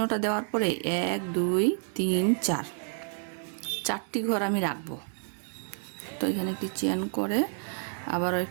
দেওয়ার পরে 1 2 3 4 চারটি ঘর আমি রাখবো। তো এখানে একটি চেন করে আবারও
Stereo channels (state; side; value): silent; left; 58 dB below the other